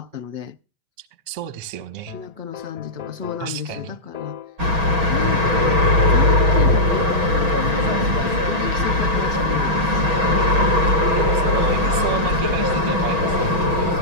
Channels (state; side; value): late; left; 6.2 ms